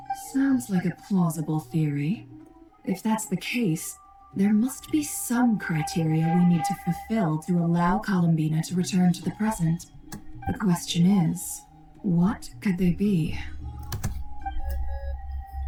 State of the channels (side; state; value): both; identical; correlation 1.00